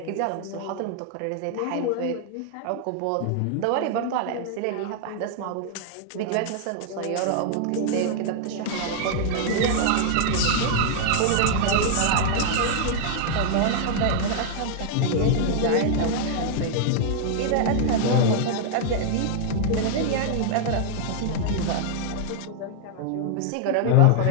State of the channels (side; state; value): both; different; correlation -0.01